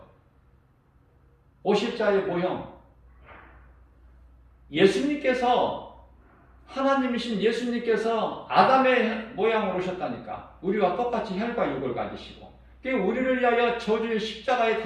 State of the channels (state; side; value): identical; both; correlation 1.00